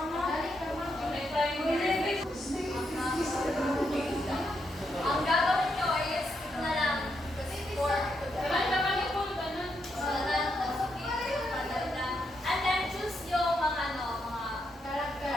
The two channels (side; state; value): both; normal; correlation 0.80